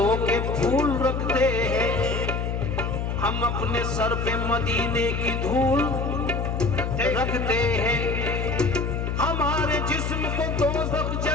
के फूल रखते हैं। हम अपने सर पे मदीने की धूल रखते हैं। हमारे जिस्म को दोज़ख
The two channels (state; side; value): noise; left; hum, 1 dB below the sound